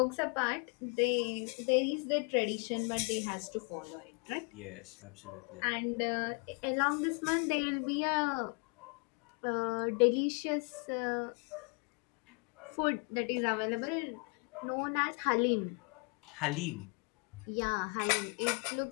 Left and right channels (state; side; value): quieter; right; 35.8 dB